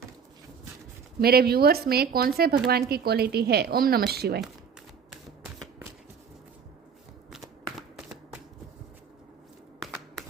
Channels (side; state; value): left; quieter; 6.7 dB